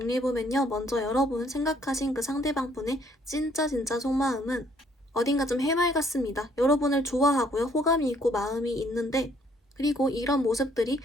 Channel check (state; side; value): normal; both; correlation 0.65